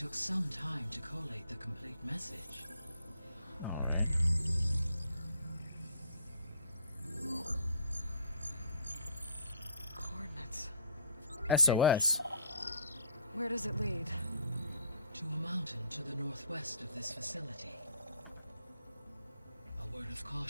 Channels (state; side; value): inverted; both; correlation -0.59